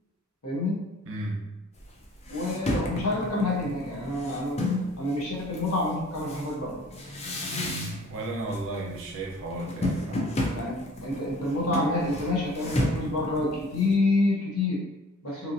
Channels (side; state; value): both; normal; correlation 0.51